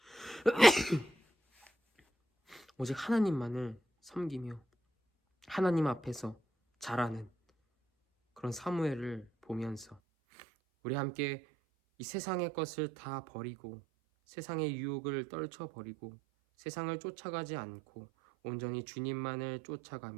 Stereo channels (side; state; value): left; drops out; at 10.0 s